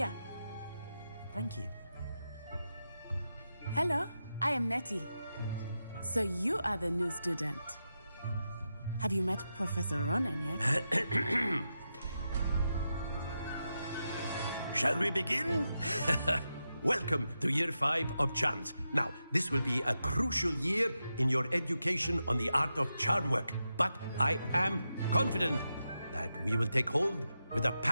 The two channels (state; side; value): inverted; both; correlation -0.88